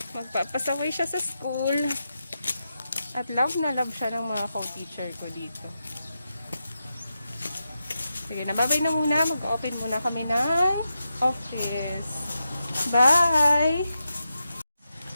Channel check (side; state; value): both; inverted; correlation -0.88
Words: Magpapasaway siya sa school. At love na love siya ng mga co-teacher ko dito. Sige, nababay na muna. Mag-open muna kami ng office. Bye!